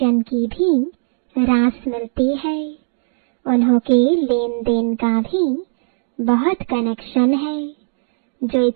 की भी रास मिलती है। उन्हों के लेन देन का भी बहुत कनेक्शन है। जो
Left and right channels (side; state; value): left; silent; 61 dB below the other